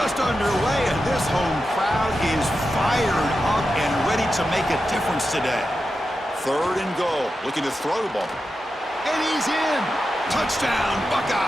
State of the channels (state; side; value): normal; both; correlation 0.90